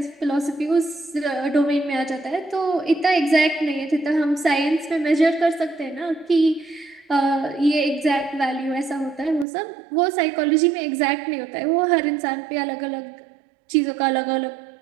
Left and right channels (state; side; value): drops out; left; at 9.5 s